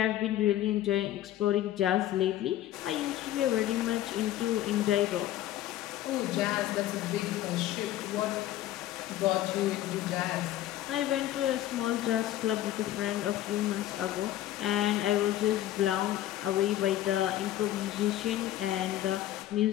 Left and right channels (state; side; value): quieter; right; 13.4 dB